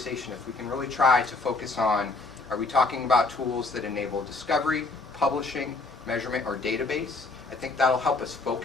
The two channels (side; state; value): right; quieter; 3.5 dB